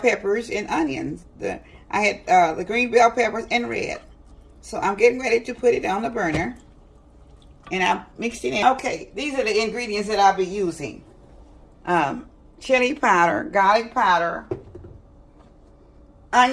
and onions. I had the green bell peppers and red. So I'm getting ready to put it on the burner. And I mixed it in. Okay, these are the ingredients that I'll be using. Chili powder, garlic powder,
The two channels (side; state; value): both; identical; correlation 1.00